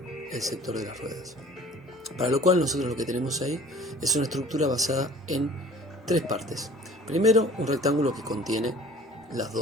sector de las ruedas. Para lo cual nosotros lo que tenemos ahí es una estructura basada en tres partes. Primero, un rectángulo que contiene las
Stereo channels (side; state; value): both; normal; correlation 0.50